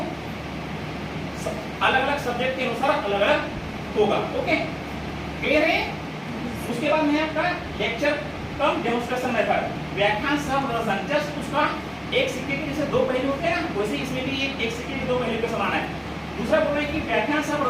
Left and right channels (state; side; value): identical; both; correlation 1.00